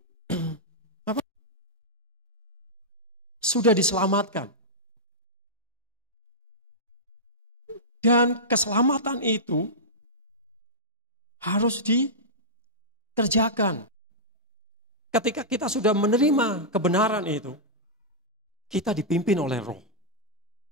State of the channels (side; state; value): both; normal; correlation -0.12